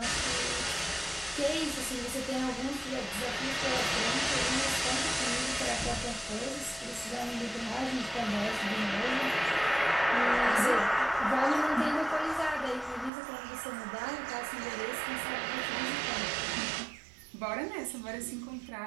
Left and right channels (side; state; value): left; drops out; at 13.1 s